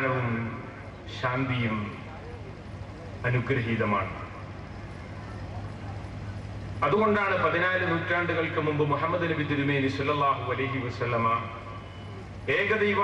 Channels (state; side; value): identical; both; correlation 1.00